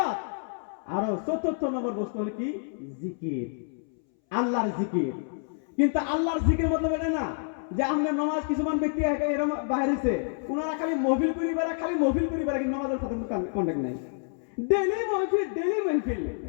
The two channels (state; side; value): silent; right; 59 dB below the other